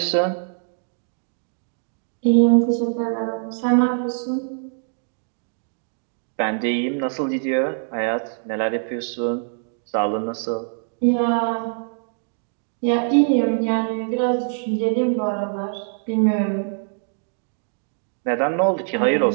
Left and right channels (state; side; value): silent; left; digital silence